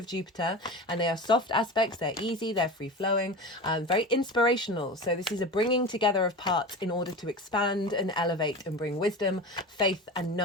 Jupiter, and they are soft aspects. They're easy, they're free-flowing, very inspirational. So this is a bringing together of parts in order to expand and elevate and bring wisdom, faith and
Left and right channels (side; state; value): both; normal; correlation 0.30